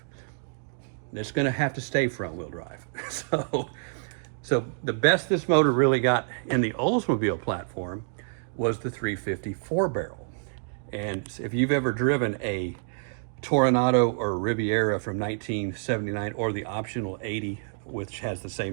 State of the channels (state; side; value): silent; left; digital silence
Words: It's going to have to stay front-wheel drive. So the best this motor really got in the Oldsmobile platform was the 350 4-barrel. And if you've ever driven a Tornado or Riviera from 1979, or the optional 80, which has the